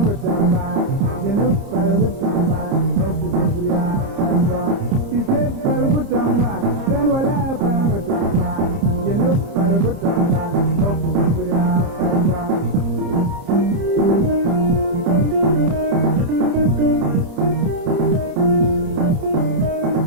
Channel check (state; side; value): late; left; 30 ms